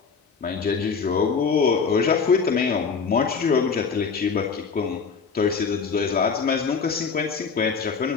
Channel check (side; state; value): right; quieter; 5.4 dB